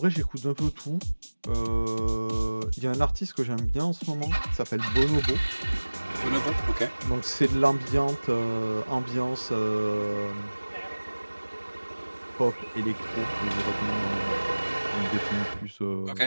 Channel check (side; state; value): both; inverted; correlation -1.00